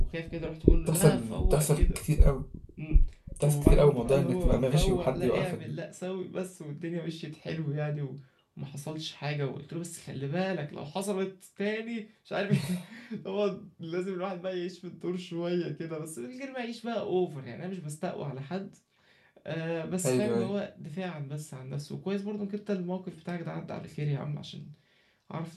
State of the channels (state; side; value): identical; both; correlation 1.00